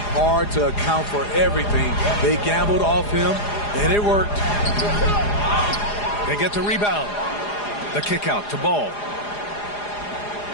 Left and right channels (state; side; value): late; right; 4.9 ms